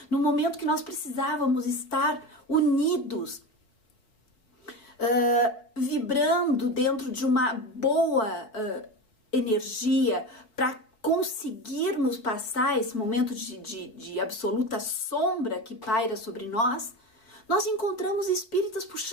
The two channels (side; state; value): right; late; 5.0 ms